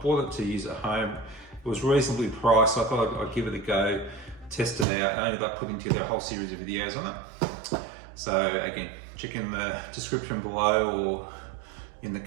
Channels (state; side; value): drops out; left; at 4.9 s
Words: it to use at home. It was reasonably priced, so I thought I'd give it a go, test it out. I ended up putting together a whole series of videos on it. So again, check in the description below or in the